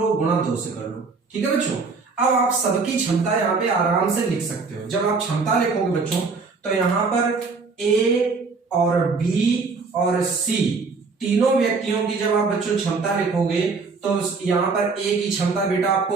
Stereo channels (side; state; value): left; quieter; 4.4 dB